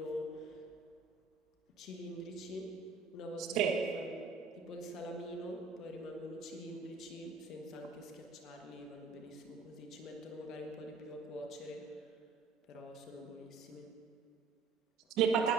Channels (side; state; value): left; quieter; 4.6 dB